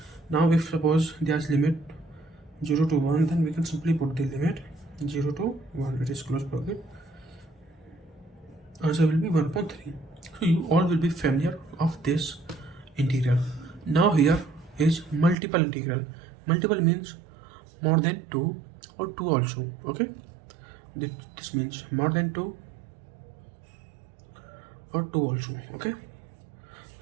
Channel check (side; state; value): left; drops out; at 15.4 s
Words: Now if suppose there's limit 0 to 1, then we can simply put the limit 0 to 1, it is close bracket, answer will be 1 upon 3. So you all will be familiar of this integral. Now here is multiple integral. Multiple means more than 2 or 2 also. Okay, this means more than 2 or 2 also. Okay,